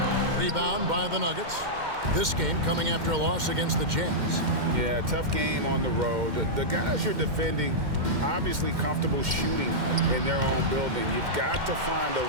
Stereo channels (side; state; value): left; late; 2.1 ms